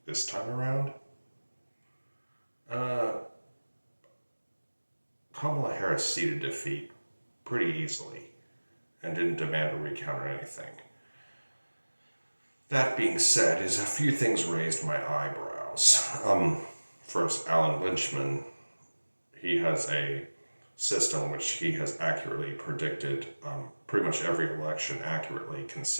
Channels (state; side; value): inverted; both; correlation -1.00